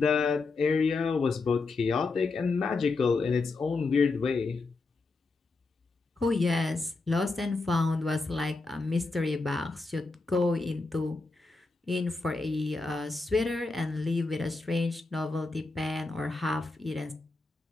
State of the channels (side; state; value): right; quieter; 3.7 dB